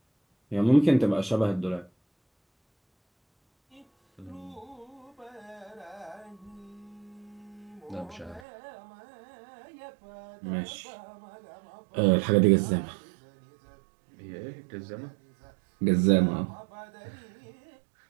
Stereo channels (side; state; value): left; drops out; at 8.4 s